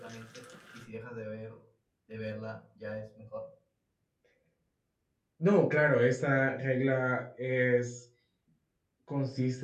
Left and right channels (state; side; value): identical; both; correlation 1.00